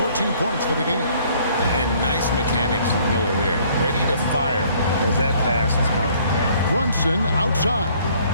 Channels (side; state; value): both; inverted; correlation -0.60